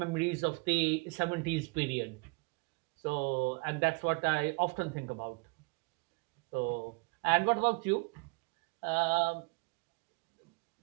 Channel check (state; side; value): quieter; left; 30.9 dB